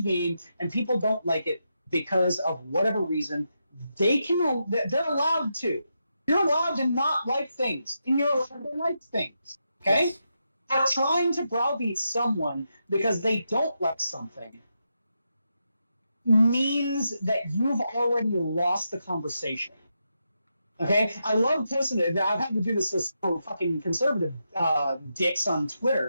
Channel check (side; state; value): both; inverted; correlation -0.85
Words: and people don't like it because of whatever reason, they're allowed to. You're allowed to not like things, and you're allowed to like things. Okay? yes. But trying to browbeat someone because they don't like something means that you've already lost the conversation. Okay, I love posting it. I've had to do this with some fucking conservative dicks on